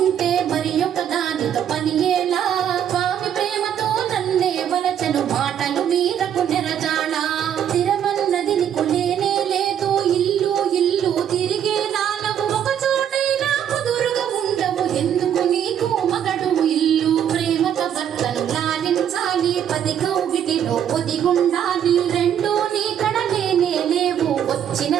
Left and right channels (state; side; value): quieter; left; 9.4 dB